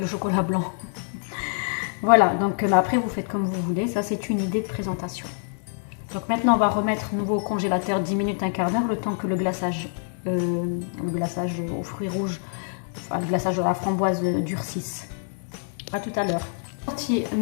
chocolat blanc. Voilà, donc après vous faites comme vous voulez. Ça c'est une idée de présentation. Donc maintenant on va remettre nouveau au congélateur 10 minutes, un quart d'heure, le temps que le glaçage aux fruits rouges, enfin, le glaçage de la framboise durcisse. À tout à l'heure. Sorti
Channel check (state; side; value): silent; right; 61 dB below the other